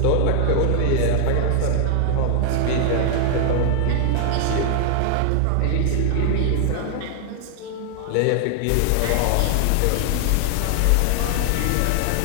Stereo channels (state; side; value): different; both; correlation 0.00